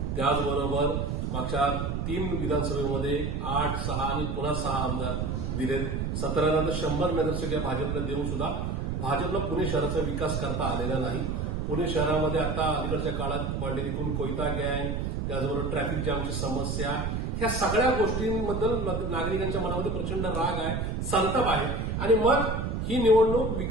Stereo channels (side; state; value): right; noise; rumble, 1 dB below the sound